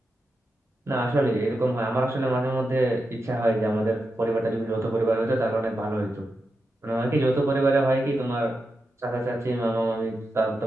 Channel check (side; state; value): both; normal; correlation 0.88